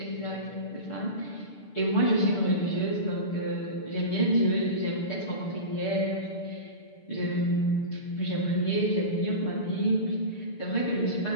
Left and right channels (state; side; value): late; right; 6.7 ms